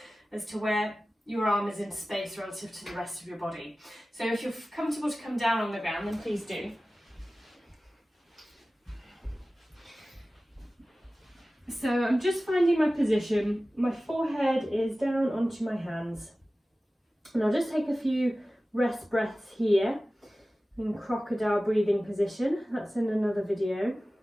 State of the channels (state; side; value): normal; both; correlation 0.96